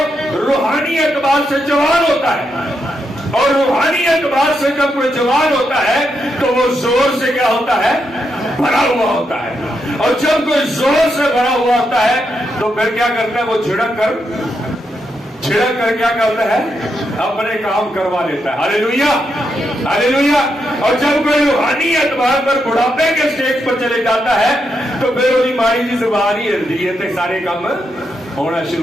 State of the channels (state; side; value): normal; both; correlation 0.82